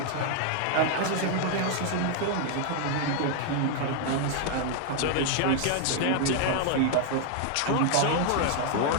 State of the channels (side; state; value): both; different; correlation 0.00